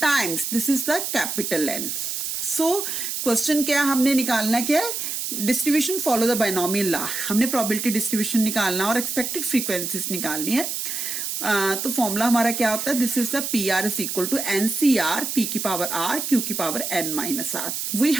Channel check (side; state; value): right; noise; hiss, 3 dB below the sound